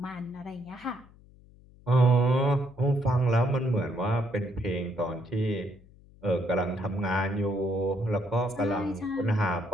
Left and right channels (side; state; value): left; noise; hum, 25 dB below the sound